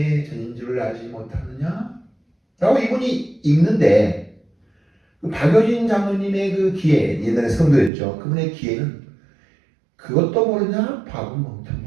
전인 줄을 알지 못하느냐? 라고 이분이 읽는데 그 박효진 장로님의 그 기회, 옛날에 성도였죠. 그분의 기회는 그것도 모르냐? 바보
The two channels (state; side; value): drops out; left; at 7.9 s